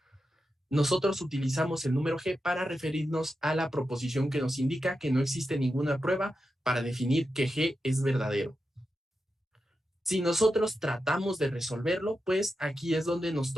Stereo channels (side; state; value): both; normal; correlation 0.89